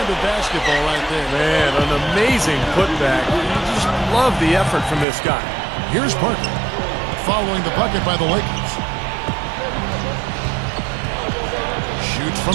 of basketball right there. Man, an amazing putback. You just love the effort from this guy. Here's Parker, following the bucket by the Lakers. Shoots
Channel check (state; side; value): drops out; left; at 5.1 s